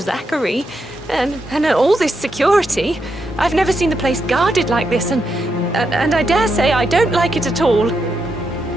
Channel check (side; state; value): both; normal; correlation 0.83